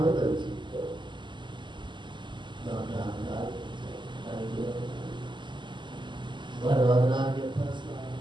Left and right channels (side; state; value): left; late; 0.22 ms